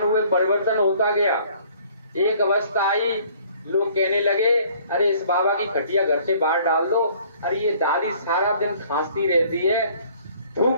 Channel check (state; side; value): inverted; both; correlation -0.58